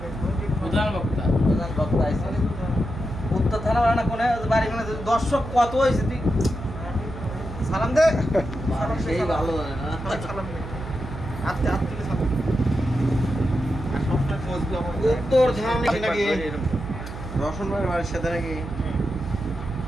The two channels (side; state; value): right; noise; hum, 10 dB below the sound